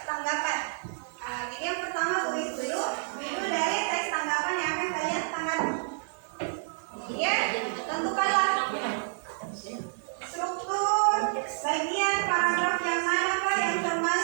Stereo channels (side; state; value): left; silent; 58 dB below the other